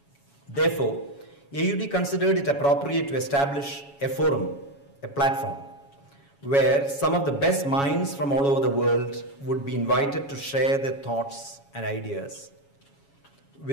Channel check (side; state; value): right; late; 7.2 ms